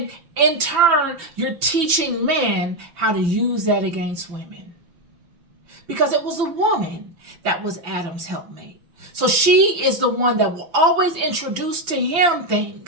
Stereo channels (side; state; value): left; late; 5.9 ms